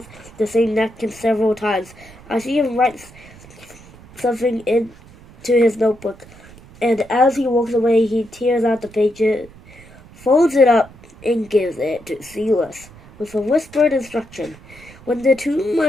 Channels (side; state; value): right; noise; rumble, 22 dB below the sound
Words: the same napkin several times. I see him write something into his notebook, and as he walks away, he tears out the pages, folds it up, and gives it to Silas with a whispered instruction. When the two